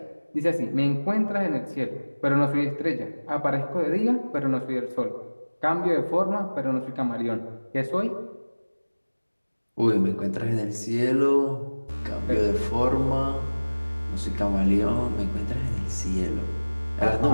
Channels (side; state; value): both; inverted; correlation -1.00